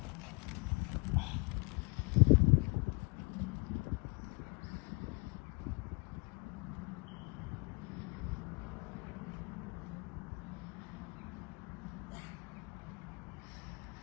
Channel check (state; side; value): quieter; right; 29.0 dB